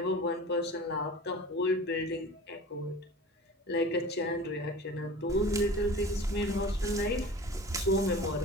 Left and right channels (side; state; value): both; normal; correlation 0.38